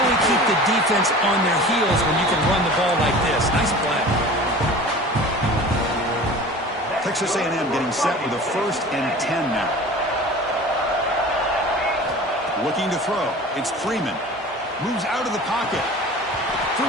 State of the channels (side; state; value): both; normal; correlation 0.39